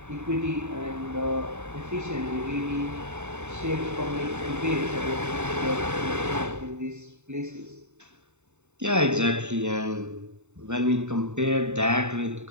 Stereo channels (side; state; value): left; late; 0.83 ms